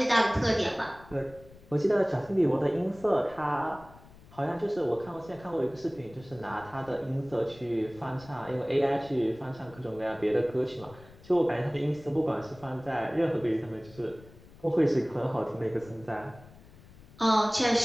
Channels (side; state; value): left; noise; rumble, 22 dB below the sound